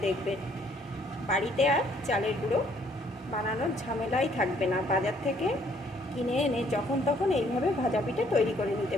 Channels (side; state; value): both; normal; correlation 0.64